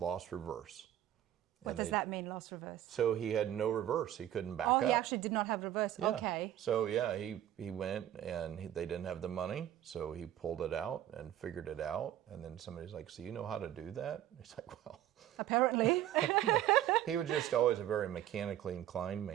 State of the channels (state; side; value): quieter; left; 12.1 dB